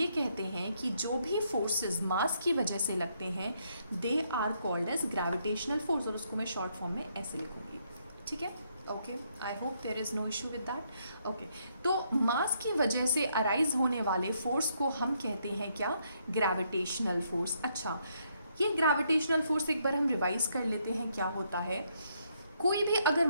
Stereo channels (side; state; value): both; inverted; correlation -0.74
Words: कहते हैं कि जो भी फोर्सेस मास की वजह से लगते हैं they are called as gravitational force, और उसको मैं शॉर्ट फॉर्म में ऐसे लिखूंगी, ठीक है। Okay, I hope there is no issue with that. Okay, तो मास की वजह से अराइज होने वाले फोर्स को हम कहते हैं क्या, ग्रेविटेशनल फोर्स। अच्छा, ये ग्रेविटेशनल फोर्स एक बार हम रिवाइज कर लेते हैं क्या होता है। कोई भी अगर